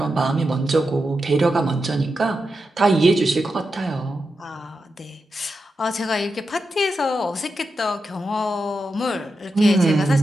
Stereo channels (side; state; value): both; normal; correlation 0.88